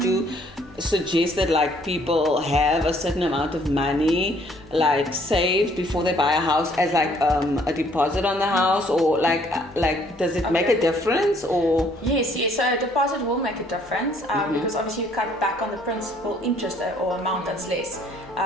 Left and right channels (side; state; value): both; normal; correlation 0.63